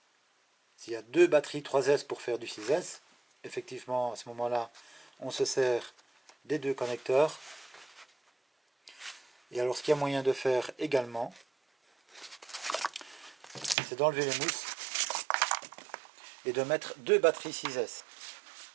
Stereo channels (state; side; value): drops out; left; at 13.8 s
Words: S'il y a deux batteries 3S pour faire du 6S, effectivement à ce moment-là, on se sert des deux connecteurs. Et alors ce qu'il y a moyen de faire également, c'est d'enlever les mousses et de mettre deux batteries 6S.